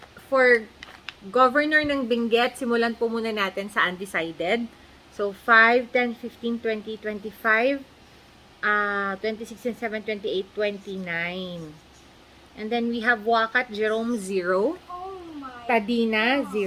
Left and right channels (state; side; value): identical; both; correlation 1.00